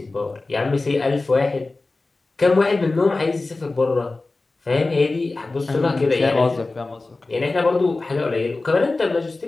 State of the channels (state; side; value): quieter; right; 3.4 dB